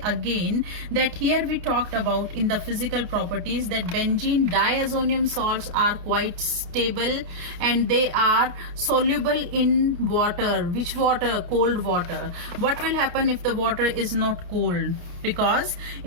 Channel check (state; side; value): late; left; 29 ms